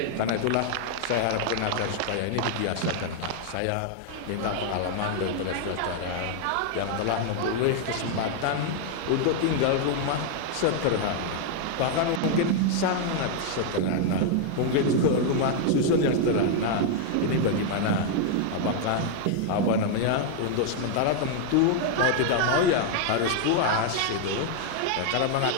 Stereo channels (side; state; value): both; different; correlation 0.00